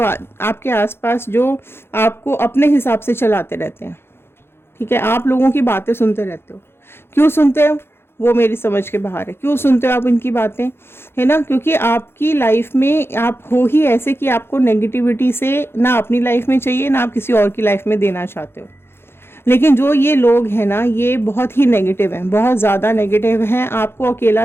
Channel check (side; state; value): right; late; 0.11 ms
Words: आपके आसपास जो आपको अपने हिसाब से चलाते रहते हैं, ठीक है। आप लोगों की बातें सुनते रहते हो। क्यों सुनते हो वो मेरी समझ के बाहर है। क्यों सुनते हो आप इनकी बातें, है ना, क्योंकि आपकी लाइफ में आप हो ही ऐसे कि आपको नेगेटिविटी से ना अपनी लाइफ में चाहिए ना आप किसी और की लाइफ में देना चाहते हो। लेकिन जो ये लोग हैं ना ये बहुत ही नेगेटिव हैं, बहुत ज़्यादा नेगेटिव हैं, आपको